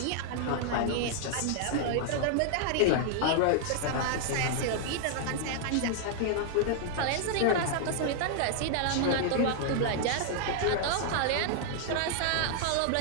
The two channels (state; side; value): different; both; correlation 0.00